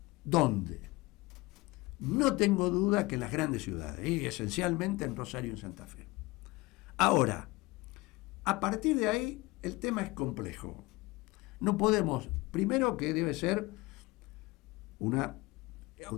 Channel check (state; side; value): quieter; right; 22.0 dB